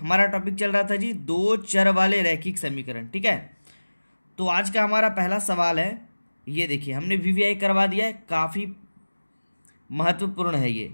टॉपिक चल रहा था जी दो चर वाले रैखिक समीकरण। ठीक है, तो आज का हमारा पहला सवाल है, ये देखिए हमने वीवीआई करवा दिया है, काफ़ी महत्वपूर्ण है ये,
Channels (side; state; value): both; inverted; correlation -1.00